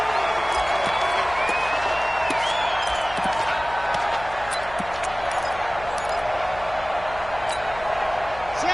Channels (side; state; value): left; noise; hum, 16 dB below the sound